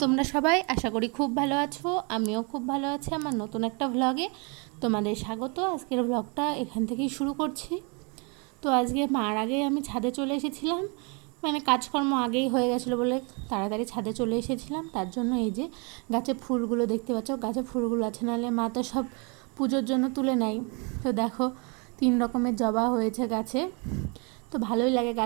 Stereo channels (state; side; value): quieter; left; 33.4 dB